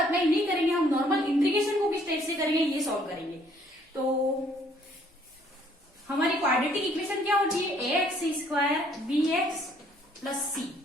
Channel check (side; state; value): both; normal; correlation 0.63